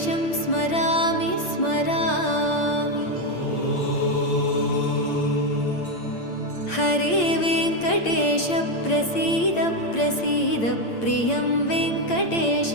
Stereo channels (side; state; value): right; late; 8.8 ms